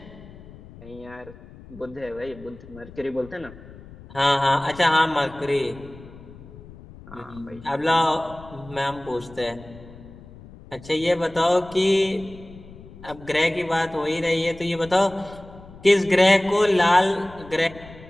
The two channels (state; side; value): noise; left; rumble, 19 dB below the sound